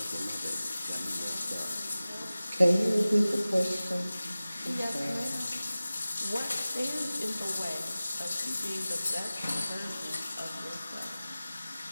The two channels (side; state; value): both; inverted; correlation -0.97